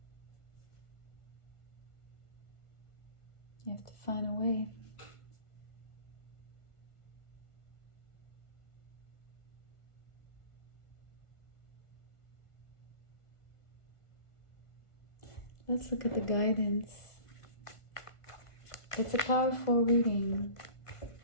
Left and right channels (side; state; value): right; late; 1.5 ms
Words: You have to find a way. Let's look at the guidance. It's a powerful reading.